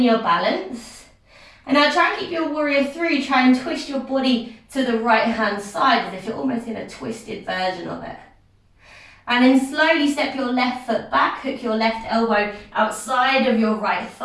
your balance. And now try and keep your warrior 3, try and twist your body to the right hand side as if you're almost in a twisted version of it. And then slowly step your left foot back, hook your left elbow outside of your right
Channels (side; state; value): both; identical; correlation 1.00